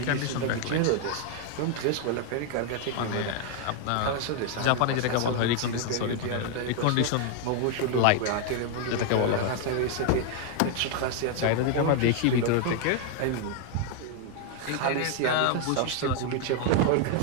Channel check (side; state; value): both; different; correlation 0.00